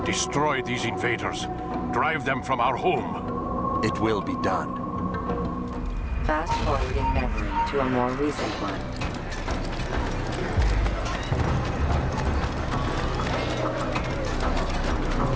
Destroy these invaders. Drive them from our home. It will be done. Fast-forwarding memory to a more recent one.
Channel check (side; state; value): both; identical; correlation 1.00